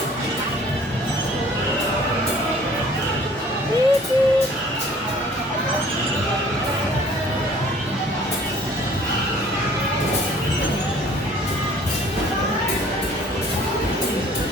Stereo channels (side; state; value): both; normal; correlation 0.53